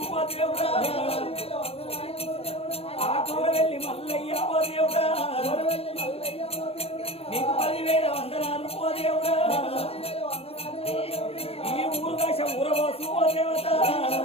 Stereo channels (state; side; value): late; right; 0.29 ms